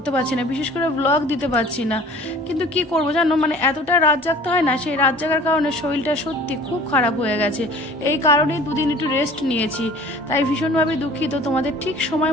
পারছি না, বিশেষ করে ব্লগ দিতে পারছি না। কিন্তু কি করব জানো, মানে এতটা রাত জাগতে হয় না, সেই রাত জাগার কারণে শরীরটা সত্যি খুব খারাপ হয়ে গেছে। এই কারণেই দুদিন একটু রেস্ট নিয়েছি, তাই ভীষণভাবে দুঃখিত তোমাদের ঠিক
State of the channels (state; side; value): normal; both; correlation 0.47